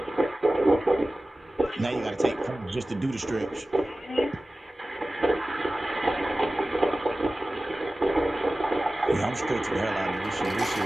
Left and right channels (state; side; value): normal; both; correlation 0.96